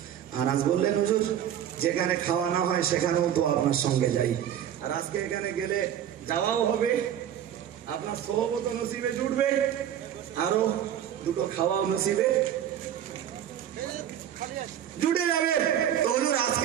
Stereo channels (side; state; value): left; quieter; 10.2 dB